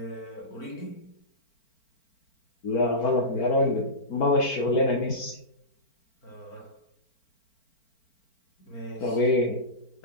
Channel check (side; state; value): right; late; 4.4 ms